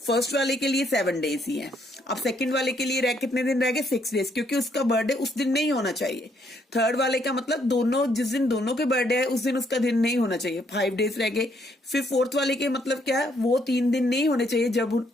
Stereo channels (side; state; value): both; normal; correlation 0.71